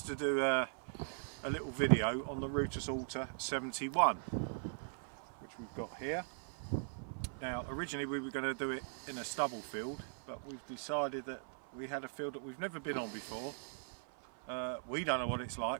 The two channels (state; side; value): silent; left; 51 dB below the other